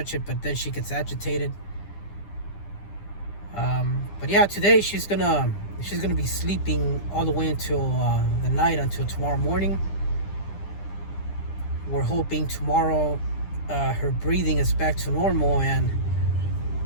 it, but then she gets agitated. But yeah, today she's gonna be sleeping all the way until the night, until tomorrow morning. We're hoping tomorrow her breathing is back to normal, and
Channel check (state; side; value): late; right; 10 ms